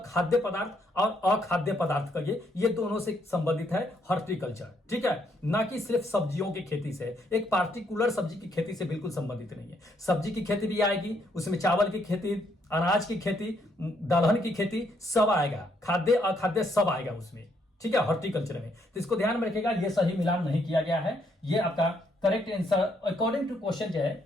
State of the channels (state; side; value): normal; both; correlation 0.73